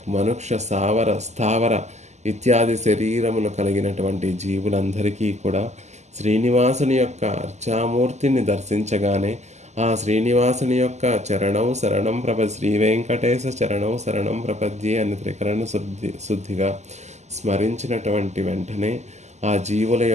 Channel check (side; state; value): left; late; 0.33 ms